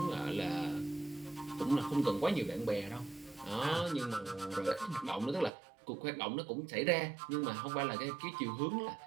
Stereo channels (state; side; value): drops out; left; at 5.5 s